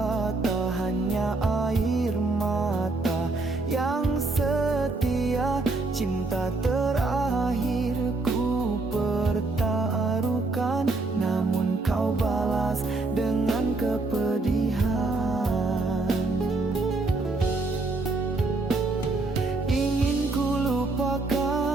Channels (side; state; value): left; quieter; 3.3 dB